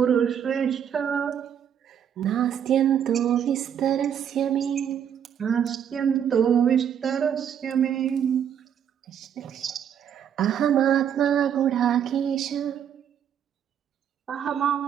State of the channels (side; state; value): left; quieter; 8.8 dB